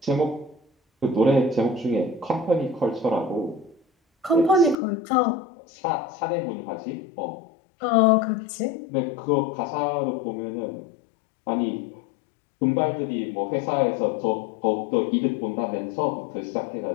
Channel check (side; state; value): right; drops out; at 4.8 s